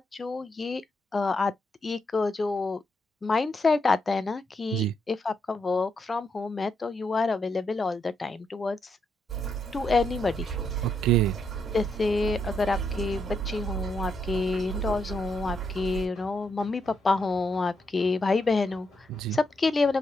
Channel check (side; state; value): both; normal; correlation 0.79